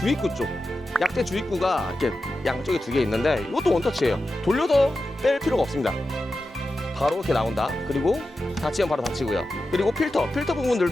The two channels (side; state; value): both; normal; correlation 0.91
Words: 쪽, 약대 주입구가 이렇게 양쪽에 2개 있는데 이것도 원터치예요. 돌려서 뺄 필요가 없습니다. 바로 이렇게 나온다. 그리고 닫히면 바로 닫히고요. 그리고 필터